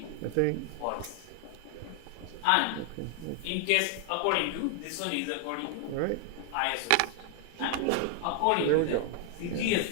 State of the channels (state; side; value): different; both; correlation 0.00